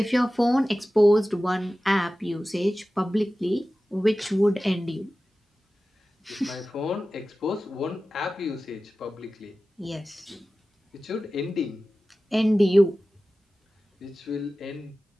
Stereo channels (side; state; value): both; normal; correlation 0.96